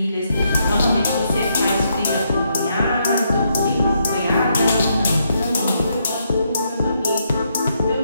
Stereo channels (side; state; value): both; inverted; correlation -0.76